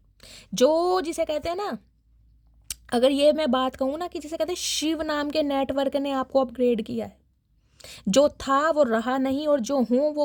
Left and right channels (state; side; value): identical; both; correlation 1.00